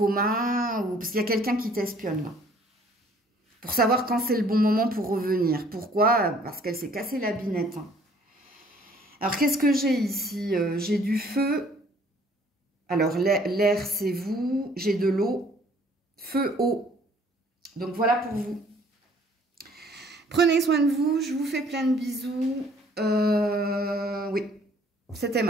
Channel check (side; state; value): both; normal; correlation 0.58